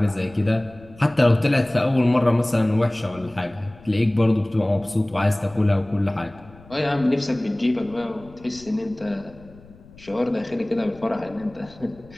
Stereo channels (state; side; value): noise; left; rumble, 23 dB below the sound